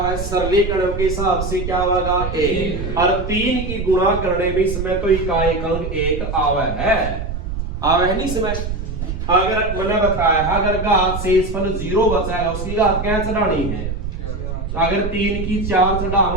सरलीकरण के हिसाब से क्या होगा 1, और 3 की गुणा करने में इसमें तो इकाई अंक 1 आवे है नहीं इसमें। अगर मैंने बताया है अगर घात शेषफल 0 बचाएगा उसकी घात क्या चढ़ानी है, अगर 3 की 4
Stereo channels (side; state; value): right; noise; rumble, 5 dB below the sound